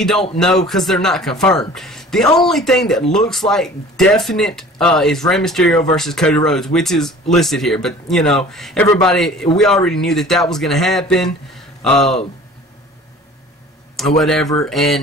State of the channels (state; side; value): normal; both; correlation 0.46